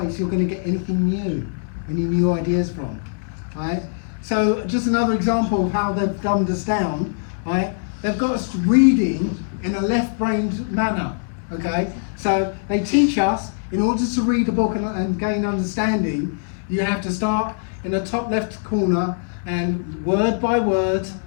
you're going to get anything new, any new ideas from. Right. So just another example of how they've dumbed us down. Right. They've got us reading in a left-brained manner. Okay, so they teach us, in order to read a book and gain understanding, You have to start in the top left corner and word by word,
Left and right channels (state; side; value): silent; right; 64 dB below the other